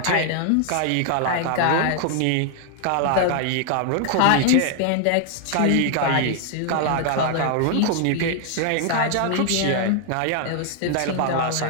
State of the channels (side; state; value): both; different; correlation 0.00